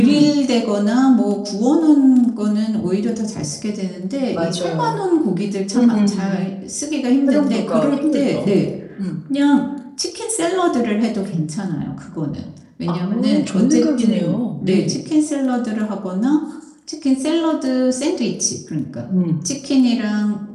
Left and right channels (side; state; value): both; identical; correlation 1.00